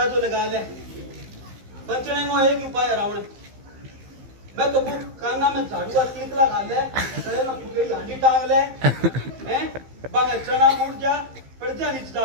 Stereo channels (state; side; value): late; left; 15 ms